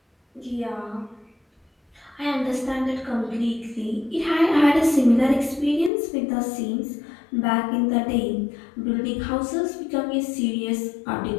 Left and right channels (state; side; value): drops out; right; at 5.9 s